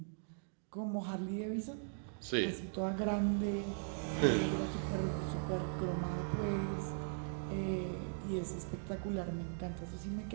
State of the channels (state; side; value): silent; left; digital silence